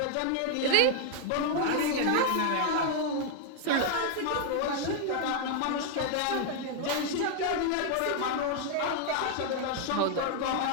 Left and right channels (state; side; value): different; both; correlation 0.00